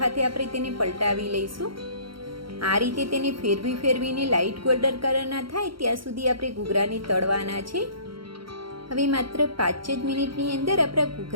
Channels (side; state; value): left; late; 0.74 ms